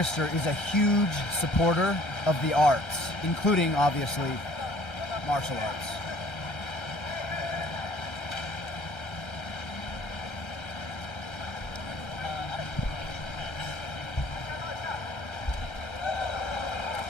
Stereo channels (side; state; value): right; late; 1.3 ms